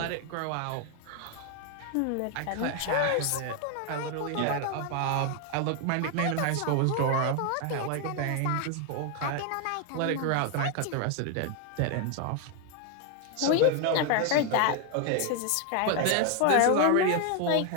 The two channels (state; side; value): different; both; correlation 0.01